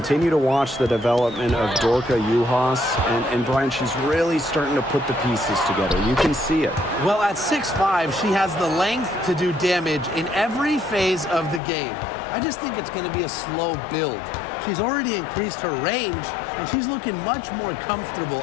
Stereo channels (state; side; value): drops out; right; at 11.6 s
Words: to watch the development of Dorka Uhas. And Brian, she's really starting to put the pieces together. You can see it. Well, at 6'5", she has the length to do damage in every phase of the game. I just think it's going to be a slow build. She's already increased her range, and she's looking much more comfortable